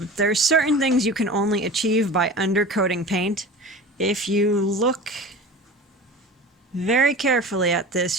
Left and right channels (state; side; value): normal; both; correlation 0.35